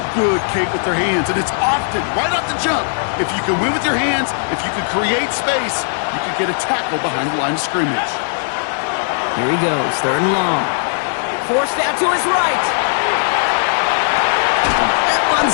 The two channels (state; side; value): silent; right; digital silence